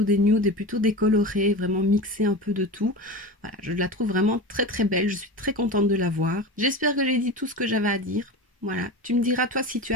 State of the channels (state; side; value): normal; both; correlation 0.28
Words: des nudes et plutôt des colorés, vraiment mixer un peu de tout. Voilà, je la trouve vraiment très très belle, je suis très contente de la voir. J'espère que j'ai dit tout ce que j'avais à dire. Voilà, tu me diras toi si tu